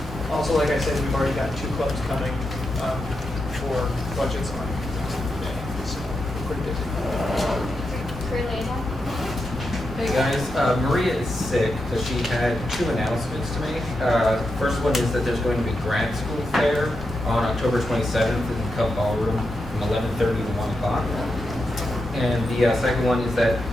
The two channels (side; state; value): both; normal; correlation 0.86